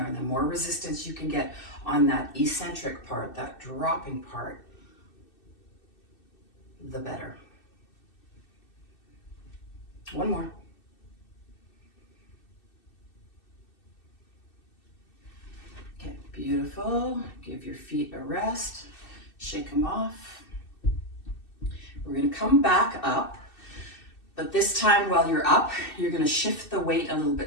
and the more resistance you can get on that eccentric part, that dropping part, the better. One more. Okay, beautiful. Give your feet a rest. Shake them off. We're going to come back up. But this time while you're up, you're going to shift the weight a little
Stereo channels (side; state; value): right; late; 2.6 ms